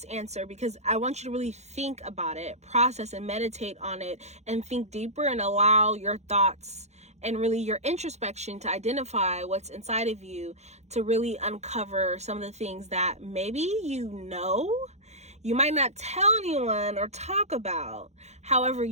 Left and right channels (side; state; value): left; late; 0.32 ms